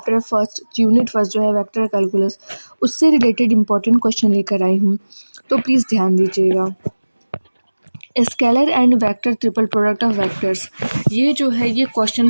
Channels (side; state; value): both; inverted; correlation -1.00